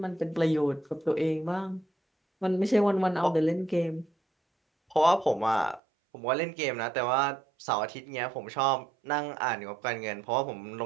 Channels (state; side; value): drops out; left; at 5.8 s